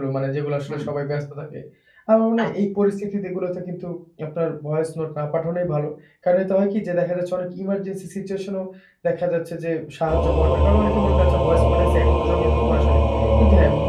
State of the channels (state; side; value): identical; both; correlation 1.00